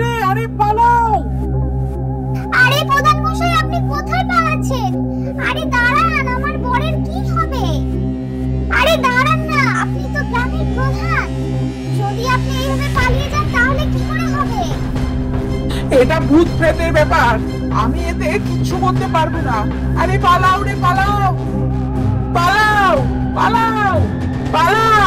রে। আরে পালাও। আরে প্রধান মশাই, আপনি কোথায় পালাচ্ছেন? আরে দাঁড়ান, আমার বরের কি হবে? আরে দাঁড়ান না, আপনি তো গ্রামের প্রধান, যদি আপনি এইভাবে পালিয়ে যান তাহলে কি করে হবে? এটা ভূত প্রেতের ব্যাপার, আমি এতে কিচ্ছু করতে পারবো না। আরে পালাও রে পালাও, পালাও পালাও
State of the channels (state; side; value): identical; both; correlation 1.00